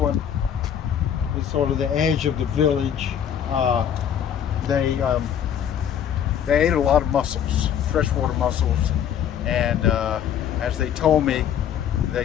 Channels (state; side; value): quieter; right; 9.1 dB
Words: is sort of the edge of the village. They ate a lot of mussels, freshwater mussels, and as they told me,